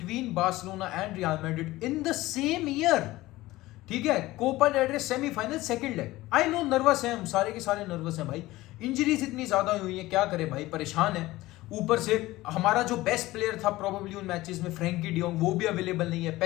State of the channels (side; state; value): right; quieter; 18.0 dB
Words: Barcelona and Real Madrid in the same year, ठीक है, Copa del Rey semifinal second leg. I know nervous है, हम सारे के सारे नर्वस हैं भाई, इंजरीज इतनी ज्यादा हुई है, क्या करे भाई, परेशान है। ऊपर से हमारा जो बेस्ट प्लेयर था प्रोबेबली उन मैचेस में फ्रैंकी डियोंग, वो भी अवेलेबल नहीं है,